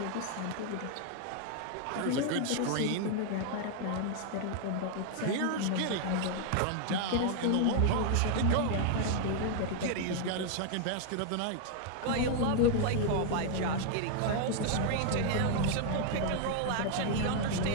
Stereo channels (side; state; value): both; different; correlation 0.00